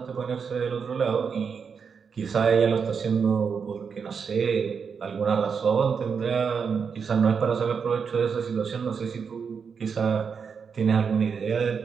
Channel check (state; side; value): quieter; left; 6.1 dB